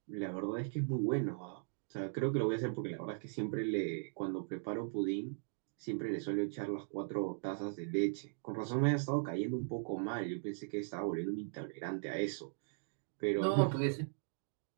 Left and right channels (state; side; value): silent; left; digital silence